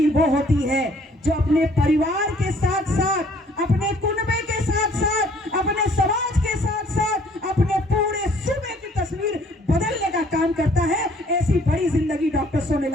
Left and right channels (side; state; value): both; normal; correlation 0.59